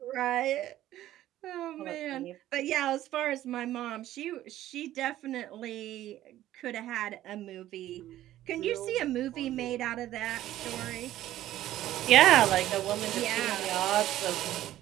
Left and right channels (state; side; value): quieter; left; 13.7 dB